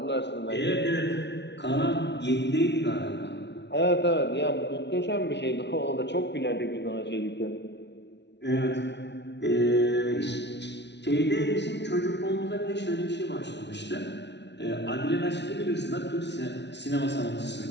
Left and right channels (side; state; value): right; late; 0.50 ms